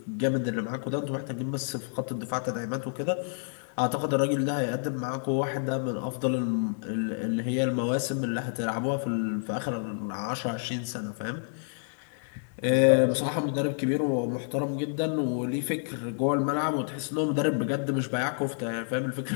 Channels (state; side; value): silent; right; digital silence